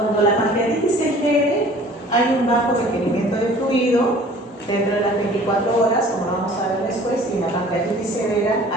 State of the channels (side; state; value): both; normal; correlation 0.49